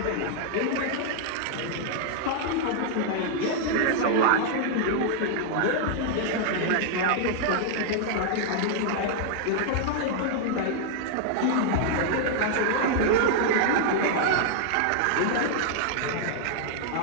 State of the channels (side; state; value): both; different; correlation -0.01